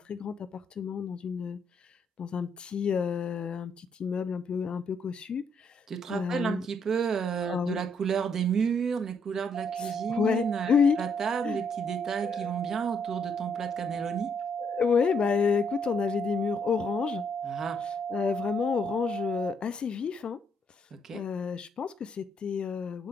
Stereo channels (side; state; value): both; normal; correlation 0.72